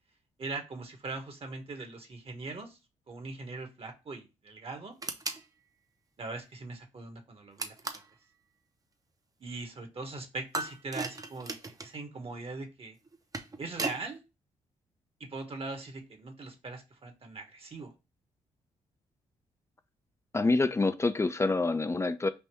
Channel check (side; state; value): both; normal; correlation 0.69